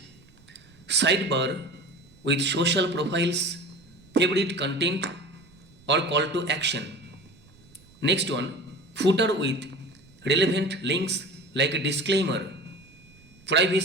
sidebar with social profiles, favorite content or call to action. Next one, footer with relevant links like a disclaimer,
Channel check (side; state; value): right; noise; rumble, 27 dB below the sound